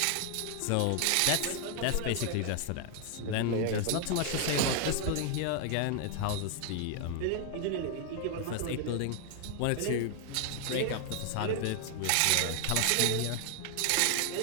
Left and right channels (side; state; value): both; different; correlation 0.00